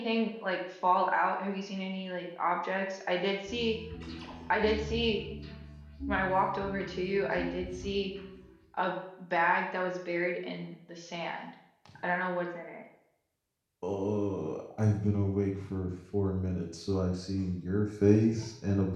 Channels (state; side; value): identical; both; correlation 1.00